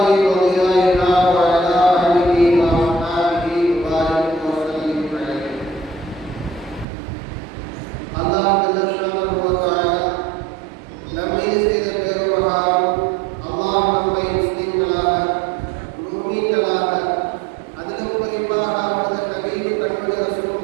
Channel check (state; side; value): drops out; left; at 6.9 s